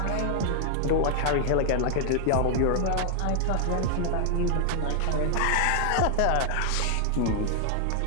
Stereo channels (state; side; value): different; both; correlation 0.00